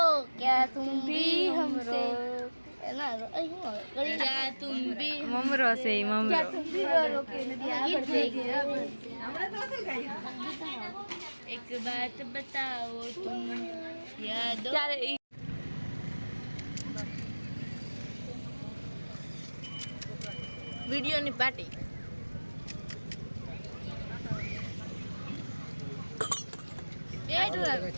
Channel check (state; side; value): inverted; both; correlation -1.00